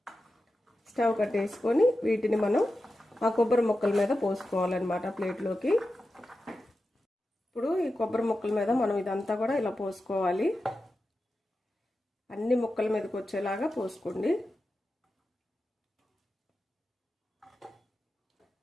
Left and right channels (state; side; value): normal; both; correlation 0.92